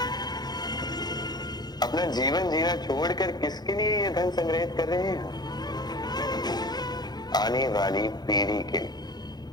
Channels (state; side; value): late; right; 0.20 ms